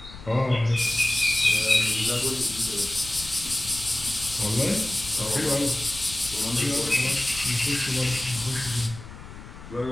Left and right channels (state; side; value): noise; left; rumble, 15 dB below the sound